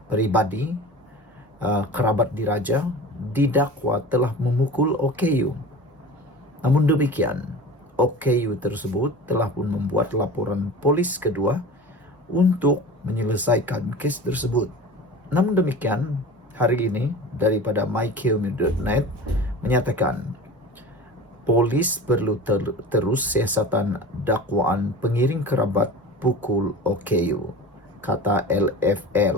pribadi kerabat diraja didakwa telah memukul OKU. Namun demikian, OKU tersebut telah pun membuat laporan polis kedua untuk menyelesaikan kes tersebut. Namun demikian, hari ini daripada mykmu.net menyatakan polis perlu terus siasatan dakwaan pengiring kerabat pukul OKU, kata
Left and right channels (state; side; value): normal; both; correlation 0.35